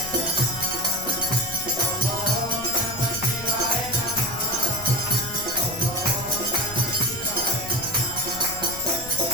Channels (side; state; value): left; noise; rumble, 14 dB below the sound